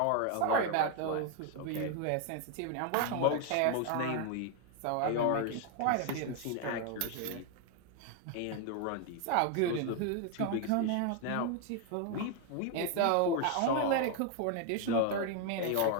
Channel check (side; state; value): both; different; correlation 0.01